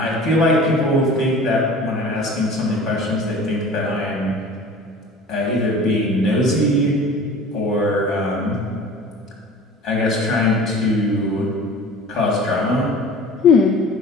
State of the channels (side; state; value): both; normal; correlation 0.42